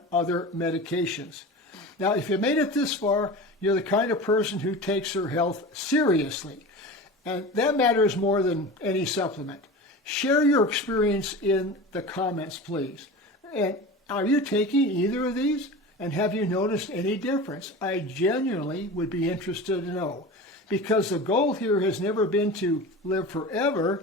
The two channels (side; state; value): both; normal; correlation 0.32